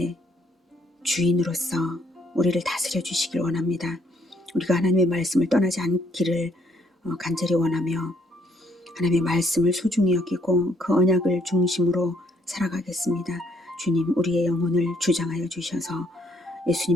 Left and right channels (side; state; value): both; normal; correlation 0.68